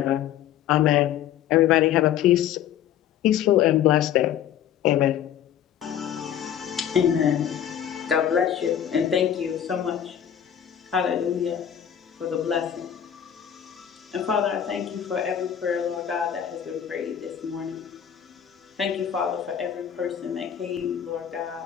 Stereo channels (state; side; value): quieter; right; 9.9 dB